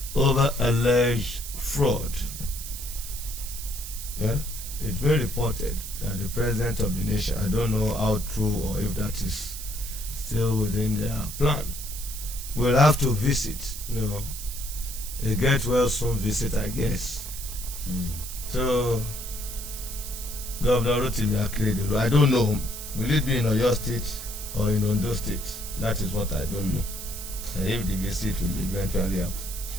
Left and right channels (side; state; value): right; noise; hiss, 9 dB below the sound